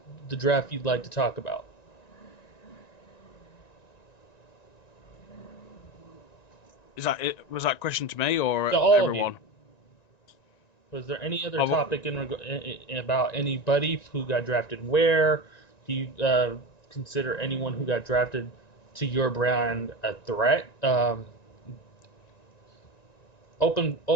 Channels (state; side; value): late; right; 1.9 ms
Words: draft you'd like to talk about? Was that question to me or To all everyone? of you. Was there any other topic about anybody who got drafted where? Do you consider anyone who got drafted to your brand a threat? Open